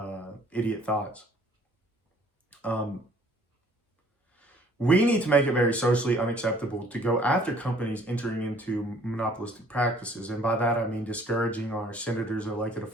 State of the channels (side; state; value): both; normal; correlation 0.57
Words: idiot thoughts. We need to make it very socially unacceptable to go after companies entering into monopolistic practices. And by that, I mean discouraging our senators and elected